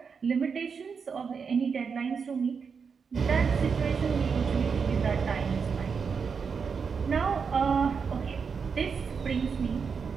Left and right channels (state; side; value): quieter; left; 5.8 dB